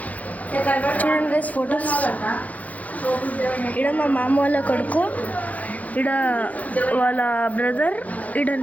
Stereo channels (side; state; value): right; late; 0.074 ms